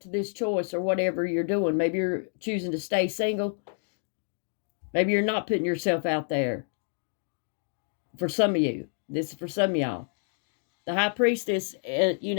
this choice or whatever you're doing. Maybe you're choosing to stay single. Maybe you're not putting yourself out there. For some of you, this is for some of y'all. The High Priestess,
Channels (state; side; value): silent; right; digital silence